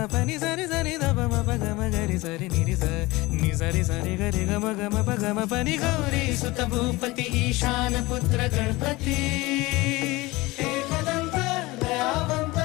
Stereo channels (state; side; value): quieter; right; 21.3 dB